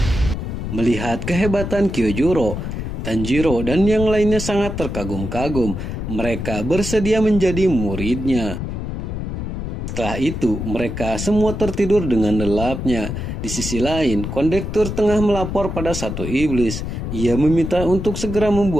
Melihat kehebatan Kyojuro, Tanjiro dan yang lainnya sangat terkagum-kagum. Mereka bersedia menjadi muridnya. Setelah itu, mereka semua tertidur dengan lelapnya. Di sisi lain, kondektur tengah melapor pada satu iblis. Ia meminta untuk segera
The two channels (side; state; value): left; noise; rumble, 5 dB below the sound